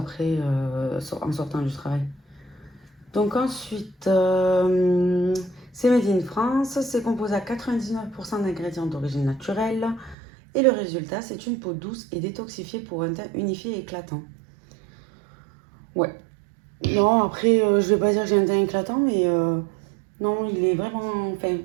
en sortant du travail. Donc ensuite, c'est made in France, c'est composé à 99% d'ingrédients d'origine naturelle. Et le résultat, c'est une peau douce et détoxifiée pour un teint unifié et éclatant. Ouais. Non, après, je vais pas dire que j'ai un teint éclatant, mais non, il est vraiment. Enfin,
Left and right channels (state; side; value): drops out; left; at 10.2 s